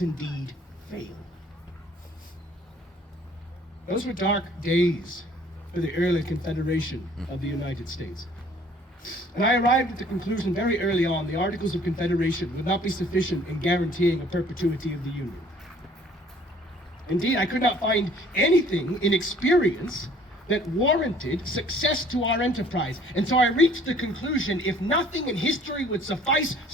indeed fail? Those were dark days for the early Confederation of the United States. And I arrived at the conclusion very early on the Articles of Confederation would not be sufficient in guaranteeing a perpetuity of the Union. Indeed, I could not find anything in experience that warranted success to our enterprise. And so I reached the conclusion, if nothing in history would suffice,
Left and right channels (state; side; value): normal; both; correlation 0.56